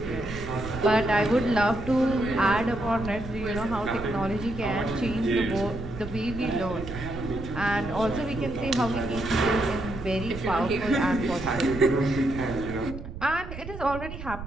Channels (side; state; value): right; noise; rumble, 10 dB below the sound